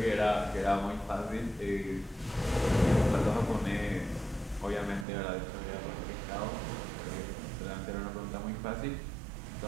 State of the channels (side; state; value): left; drops out; at 5.1 s